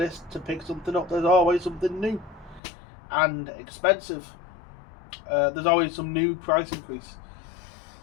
to pick something up, there's always something new. And expensive. There's always some new price increase.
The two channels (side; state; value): right; drops out; at 2.6 s